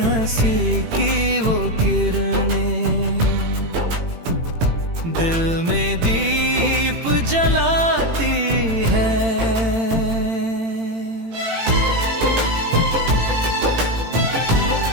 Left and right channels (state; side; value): late; left; 18 ms